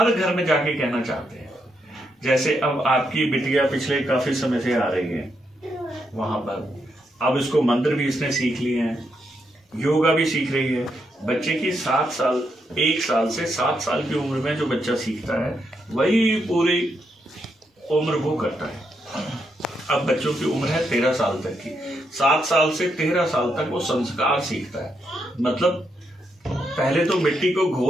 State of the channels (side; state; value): both; normal; correlation 0.80